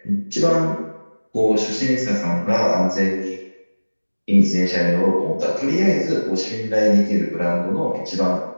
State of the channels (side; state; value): both; inverted; correlation -1.00